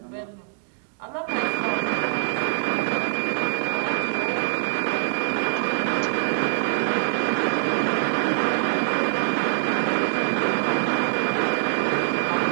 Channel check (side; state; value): left; silent; digital silence